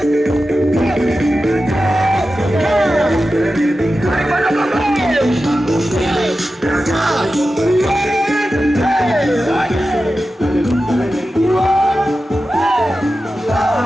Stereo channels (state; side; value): normal; both; correlation 0.93